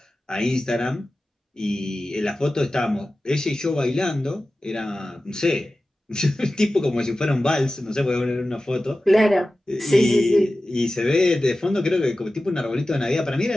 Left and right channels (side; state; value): both; normal; correlation 0.95